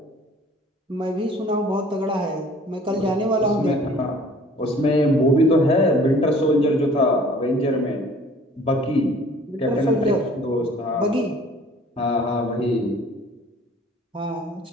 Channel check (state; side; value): normal; both; correlation 0.52